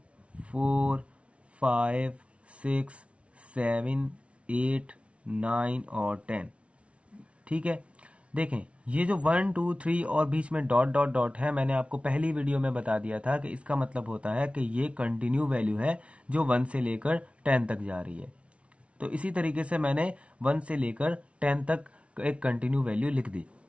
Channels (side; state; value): left; late; 0.061 ms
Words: 4 5 6 7 8 9 और 10। ठीक है, देखें ये जो 1 2 3 और बीच में डॉट डॉट डॉट है, मैंने आपको पहली वीडियो में बता दिया था कि इसका मतलब होता है कि ये कंटिन्यू वैल्यू है जो 1 से लेकर 10 तक जा रही है। तो इसी तरीके से मैंने 1 से लेकर 10 तक एक कंटिन्यू वैल्यू लिख दी।